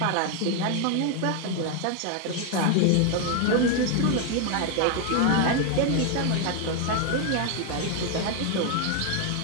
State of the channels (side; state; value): both; different; correlation 0.01